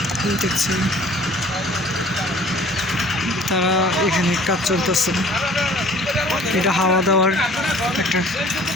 দেখছেন, তারা এখানে কাজ চলতেছে। এটা হাওয়া দেওয়ার একটা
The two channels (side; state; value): both; normal; correlation 0.51